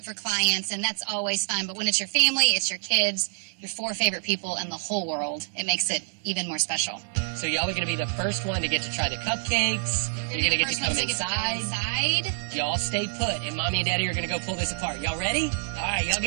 for clients, and that's always fun. But when it's your family, it's your kids, your 4 favorite people in the whole world, it makes it even more special. So y'all are going to be the first one to get to try the cupcakes. You're going to get to come inside. Y'all stay put, and Mommy and Daddy are going to go pull this apart. Y'all ready? All right, y'all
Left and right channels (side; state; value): left; silent; digital silence